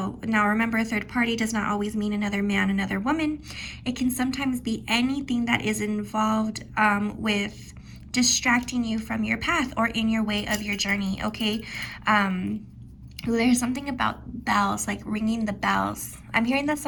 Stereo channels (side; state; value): both; identical; correlation 1.00